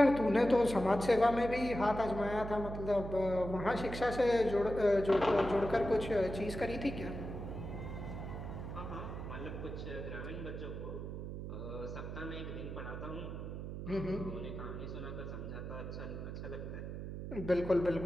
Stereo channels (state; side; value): noise; right; hum, 7 dB below the sound